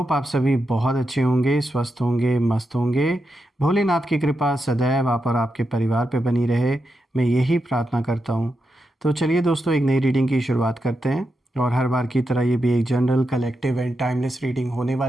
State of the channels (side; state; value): both; normal; correlation 0.86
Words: आप सभी बहुत अच्छे होंगे, स्वस्थ होंगे, मस्त होंगे। भोलेनाथ की कृपा सदैव आप और आपके परिवार पे बनी रहे, मैं यही प्रार्थना करता हूं। तो चलिए दोस्तों, एक नई रीडिंग की शुरुआत करते हैं। और हर बार की तरह ये भी एक general, collective and timeless reading होने